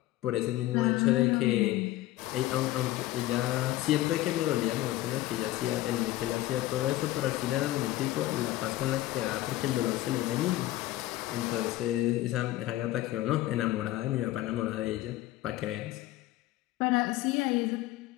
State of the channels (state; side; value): quieter; right; 16.0 dB